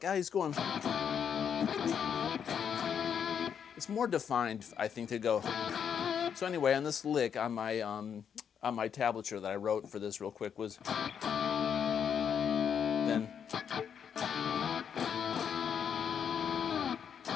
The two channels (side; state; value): right; quieter; 7.8 dB